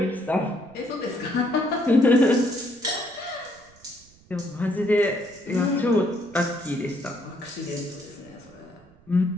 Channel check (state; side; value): noise; right; rumble, 27 dB below the sound